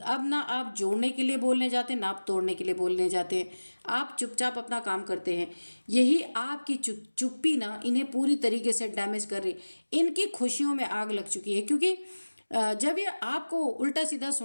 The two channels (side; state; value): both; inverted; correlation -1.00